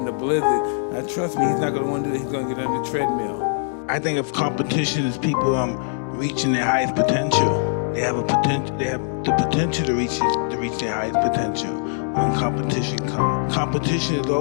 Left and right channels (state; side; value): silent; right; digital silence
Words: the blizzard, now trust me, he's not going to want to do that. He's going to get on the treadmill. I think of competition as people reaching their highest potential. They have the potential to reach their highest potential when competition comes. Competition is